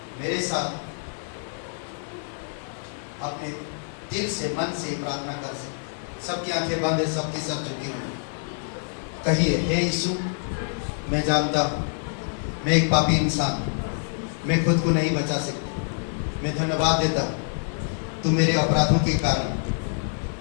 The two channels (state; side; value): silent; right; digital silence